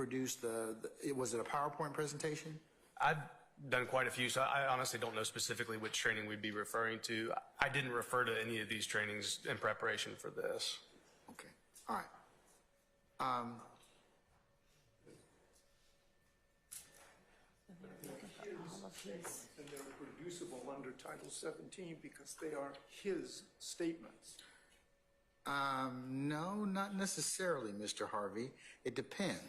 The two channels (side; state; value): both; identical; correlation 1.00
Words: was it a PowerPoint presentation? I've done quite a few, so I honestly don't know specifically which training we'd be referring to. I didn't refer to any of these trainings in preparation for this. Okay, all right. and they're producible under Title 17 because they are his statements. No, not necessarily, Mr. Harvey. It